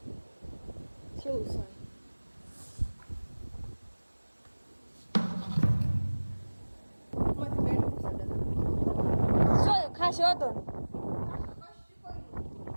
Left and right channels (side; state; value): both; inverted; correlation -1.00